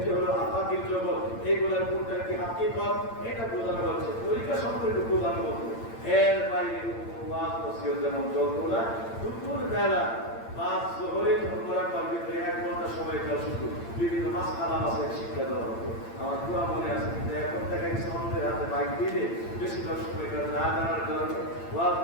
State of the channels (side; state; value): right; late; 8.8 ms